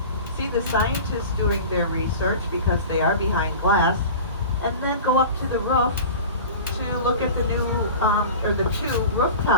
see the scientists doing their research because they are behind glass, and then go up to the roof to look at the the 2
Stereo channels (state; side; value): inverted; both; correlation -0.36